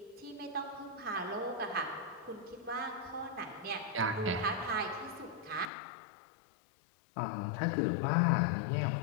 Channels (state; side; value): drops out; right; at 5.7 s